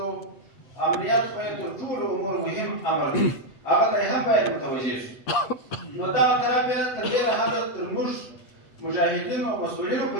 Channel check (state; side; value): late; right; 8.5 ms